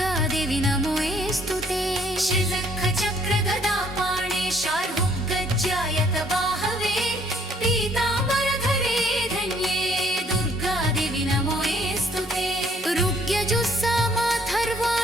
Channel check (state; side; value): normal; both; correlation 0.63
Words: नमोऽस्तु ते। शङ्खचक्रगदापाणे शार्वगज्जायतबाहवे पीताम्बरधरे धन्ये दुर्गादेवी नमोऽस्तु ते।